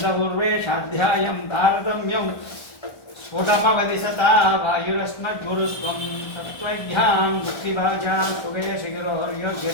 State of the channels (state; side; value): late; right; 1.3 ms